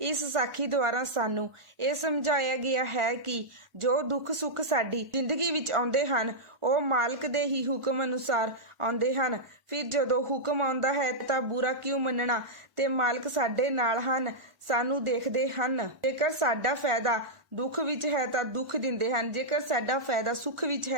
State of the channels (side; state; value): left; late; 1.4 ms